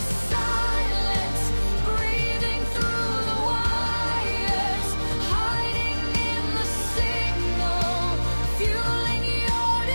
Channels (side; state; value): both; inverted; correlation -1.00